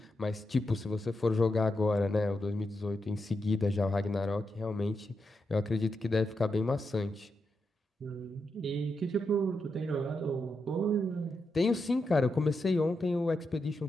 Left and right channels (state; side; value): normal; both; correlation 0.85